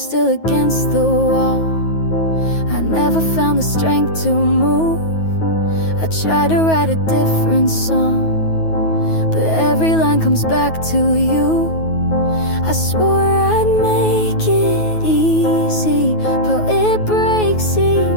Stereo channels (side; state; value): right; late; 9.3 ms